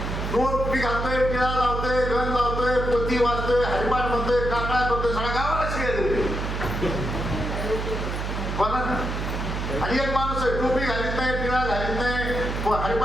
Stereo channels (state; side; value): noise; right; hum, 3 dB below the sound